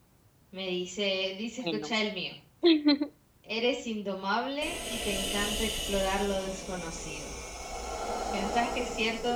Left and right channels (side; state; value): both; identical; correlation 1.00